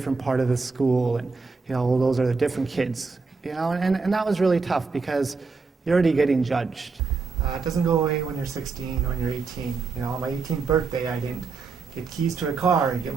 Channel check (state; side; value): quieter; left; 4.5 dB